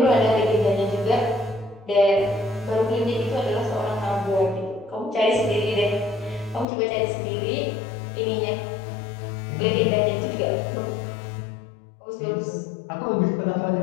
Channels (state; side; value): drops out; right; at 6.7 s